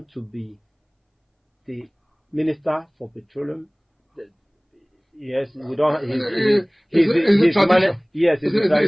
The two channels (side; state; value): both; identical; correlation 1.00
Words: to be the Minister for Petroleum. Yes, we don't. It's a tradition. Yes,